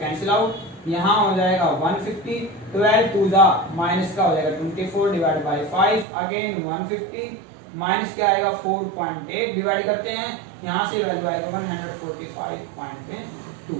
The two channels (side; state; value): left; drops out; at 6.1 s